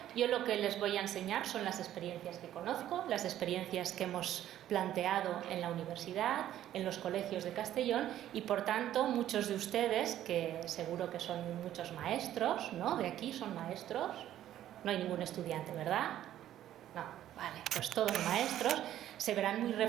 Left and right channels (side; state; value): left; quieter; 12.2 dB